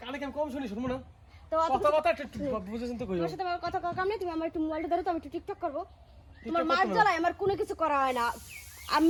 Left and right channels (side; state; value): both; identical; correlation 1.00